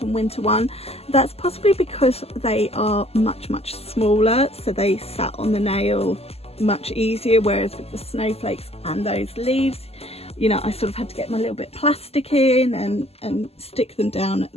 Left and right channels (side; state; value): right; late; 0.29 ms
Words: winter one. That's possibly because they are much smaller, so they sat on the nail much easier, whereas with the snowflakes and those leaves, you know, I sort of had to get my little bit of plastic in and stick them down